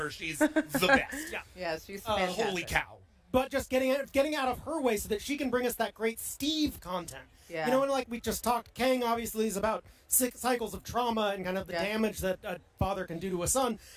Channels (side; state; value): both; identical; correlation 1.00